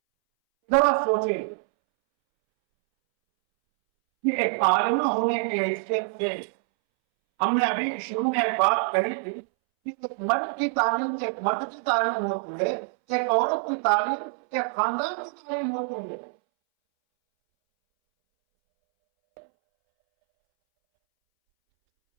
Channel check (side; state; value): left; silent; 61 dB below the other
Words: ذرا سوچیں کہ ایک عالمہ ہونے کی حیثیت سے ہم نے ابھی شروع میں ایک بات کہی تھی کہ ایک مرد کی تعلیم ایک مرد کی تعلیم ہوتی ہے, ایک عورت کی تعلیم ایک خاندان کی تعلیم ہوتی ہے.